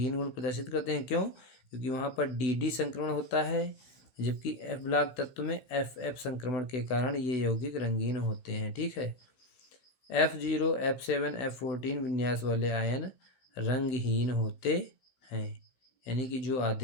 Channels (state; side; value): late; right; 15 ms